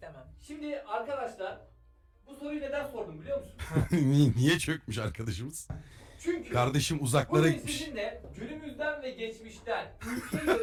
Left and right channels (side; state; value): both; identical; correlation 1.00